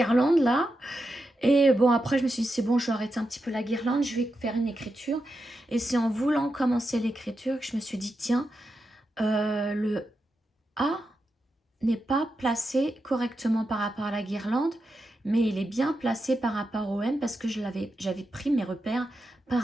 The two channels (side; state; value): both; normal; correlation 0.88